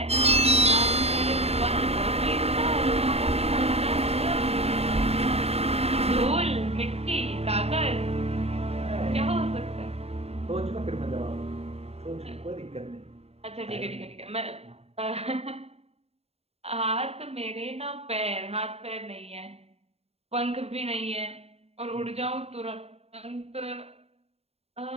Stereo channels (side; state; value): left; late; 0.30 ms